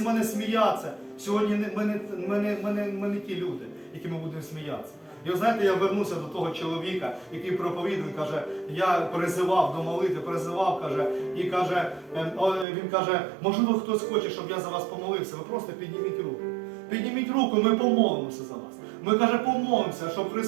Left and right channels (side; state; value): left; drops out; at 12.7 s